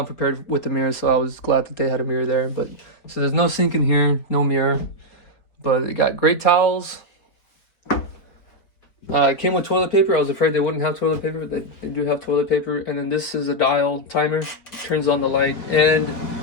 prepared with the mirror, so I was glad that they had a mirror there. But so there's no sink in here, no mirror, but it got great towels. It came with toilet paper. I was afraid they wouldn't have toilet paper, but they do have toilet paper. And then this is a dial timer, turns on the light, and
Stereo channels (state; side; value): late; right; 4.6 ms